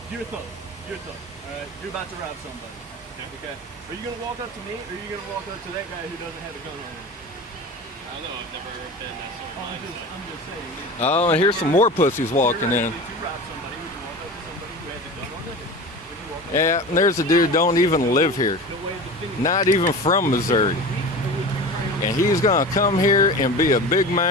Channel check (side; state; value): both; normal; correlation 0.32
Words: you're a thug. All right, you're about to rob somebody. Okay. Are you gonna walk up to me, or are you gonna walk up to that guy who doesn't have a gun on him? I don't know. I've never been that sort of mindset. I'm just saying. Oh, and here's some more pussies walking in. If you rob somebody, would you walk up to somebody who has a gun on them? Would you walk up Yeah, and there's a dude don't even live here. Not even from Missouri. And he's gonna come here and be a big